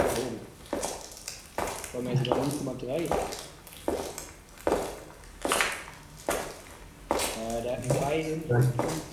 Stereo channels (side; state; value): both; identical; correlation 1.00